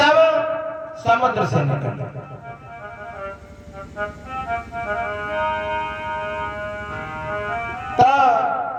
समुद्र से निकला। तो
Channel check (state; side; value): identical; both; correlation 1.00